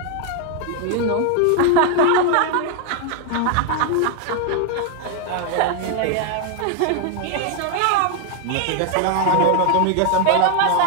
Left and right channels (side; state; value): both; different; correlation 0.01